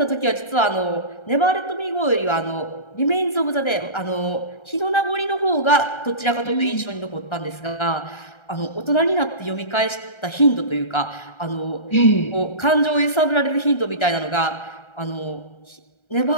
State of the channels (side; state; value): right; late; 1.3 ms